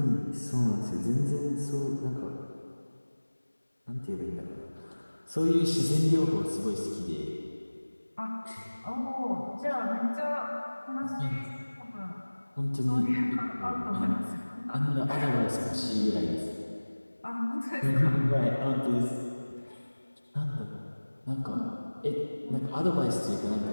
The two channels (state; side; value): inverted; both; correlation -1.00